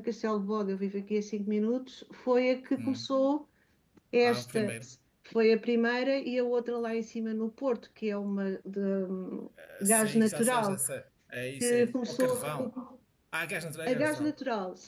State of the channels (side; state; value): both; identical; correlation 1.00